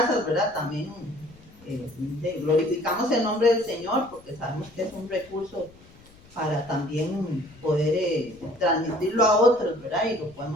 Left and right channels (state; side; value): noise; left; rumble, 25 dB below the sound